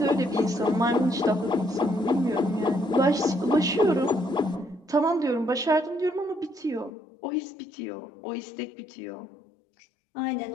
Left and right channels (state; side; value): drops out; right; at 6.9 s